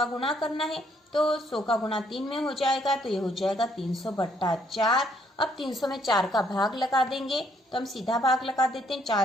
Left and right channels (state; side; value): normal; both; correlation 0.68